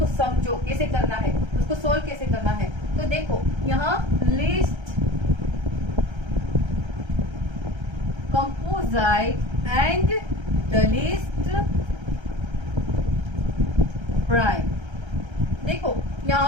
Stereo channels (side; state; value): left; late; 1.3 ms